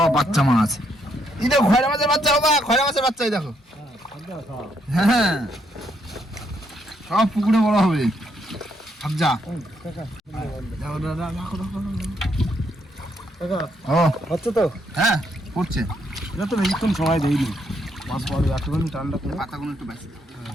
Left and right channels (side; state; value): both; normal; correlation 0.75